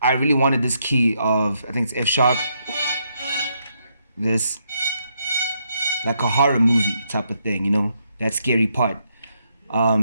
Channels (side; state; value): both; inverted; correlation -0.77